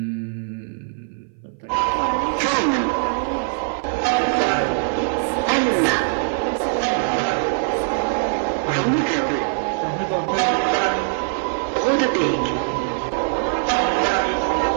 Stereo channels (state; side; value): silent; left; 58 dB below the other